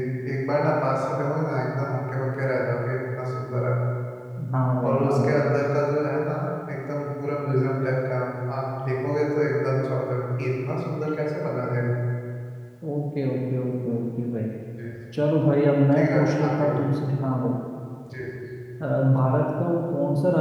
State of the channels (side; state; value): both; identical; correlation 1.00